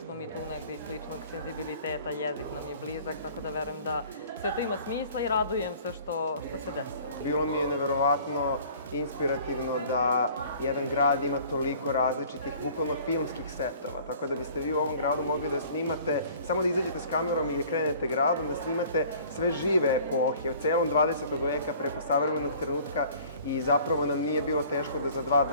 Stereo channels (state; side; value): inverted; both; correlation -0.50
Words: smo mi tu negde iz sličnog senzibiliteta, jezik nam je blizak, tako da verujem da sve to ima smisla i radujem se što se desilo. Bilo mi je neverovatno inspirativno da jedan grad ima toliko različitih, bukvalno filmskih setova, tako da biste vi u ovom gradu mogli da snimate, samo da izađete s kamerom i da krenete gradom, da snimate sve žive epohe, od celom 20. veka preko savremenog trenutka i zapravo nam nije bilo teško da za 2